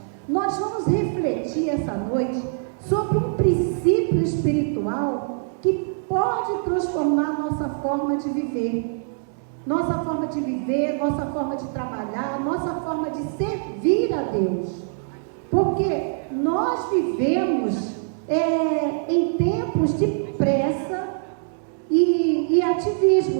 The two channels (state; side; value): silent; left; digital silence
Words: nós vamos refletir essa noite sobre um princípio espiritual que pode transformar nossa forma forma de viver. Nossa forma de viver, nossa forma de trabalhar, nossa forma de servir a Deus. Porque nós vivemos em tempos de pressa e